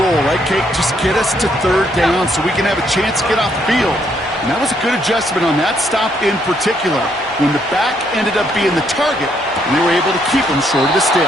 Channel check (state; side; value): normal; both; correlation 0.72